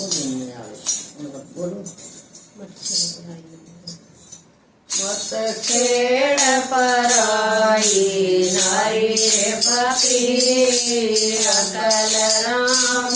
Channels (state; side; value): identical; both; correlation 1.00